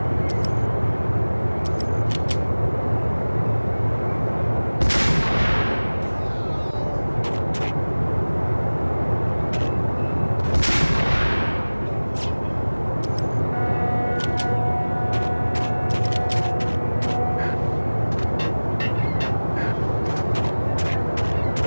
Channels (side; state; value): both; inverted; correlation -1.00